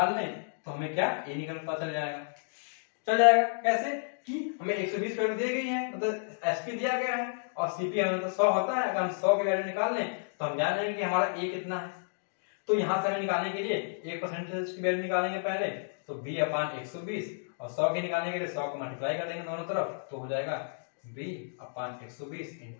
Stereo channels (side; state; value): right; silent; digital silence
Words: लें तो हमें क्या ए निकल पता चल जाएगा। कैसे कि हमें 120 वैल्यू दी गई है, मतलब एसपी दिया गया है और सीपी हमें तो 100 होता है। अगर हम 100 की वैल्यू निकाल लें तो हम जान जाएंगे कि हमारा ए कितना है। तो यहां से हमें निकालने के लिए 1% की वैल्यू निकालेंगे पहले, तो b अपान 120, और 100 की निकालने के लिए 100 को मल्टीप्लाई कर देंगे दोनों तरफ, तो हो जाएगा b अपान 120